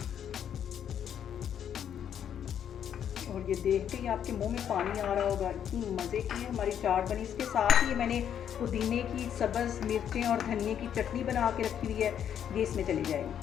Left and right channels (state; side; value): quieter; right; 9.2 dB